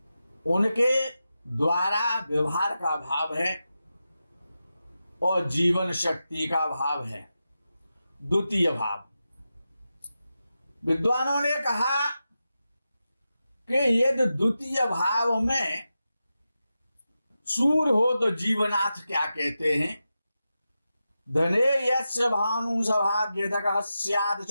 उनके द्वारा व्यवहार का भाव है और जीवन शक्ति का भाव है द्वितीय भाव। विद्वानों ने कहा कि यदि द्वितीय भाव में सूर्य हो तो जीवनाथ क्या कहते हैं, धने यस्य भानु सभाग्यतकः स्यात्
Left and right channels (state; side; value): inverted; both; correlation -0.91